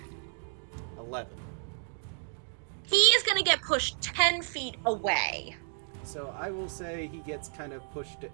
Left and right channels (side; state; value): left; silent; 57 dB below the other